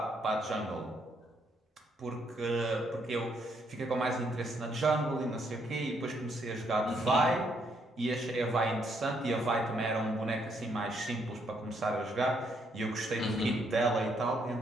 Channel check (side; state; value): both; normal; correlation 0.73